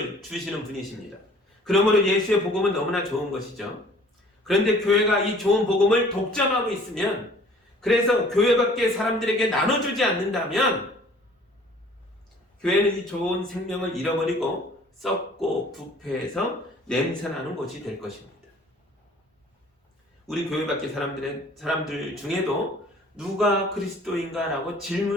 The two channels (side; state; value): both; normal; correlation 0.52